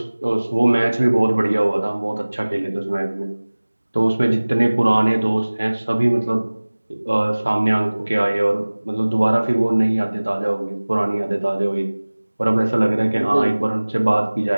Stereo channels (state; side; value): inverted; both; correlation -1.00